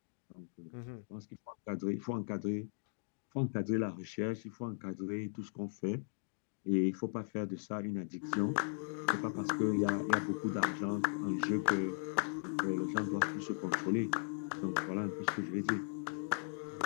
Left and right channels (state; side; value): silent; right; digital silence